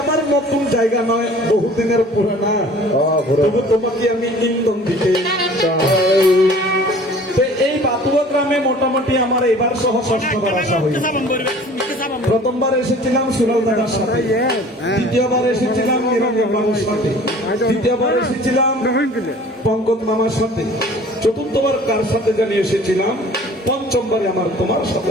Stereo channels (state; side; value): normal; both; correlation 0.48